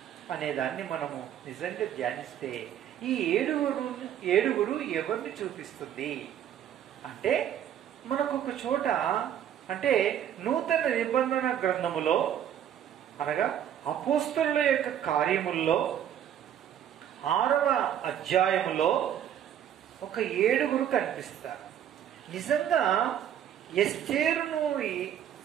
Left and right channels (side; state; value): left; quieter; 10.1 dB